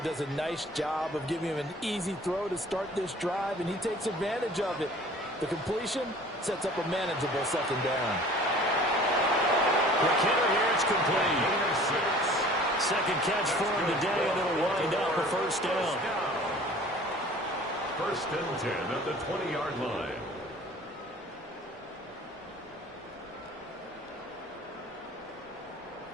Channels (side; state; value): both; normal; correlation 0.48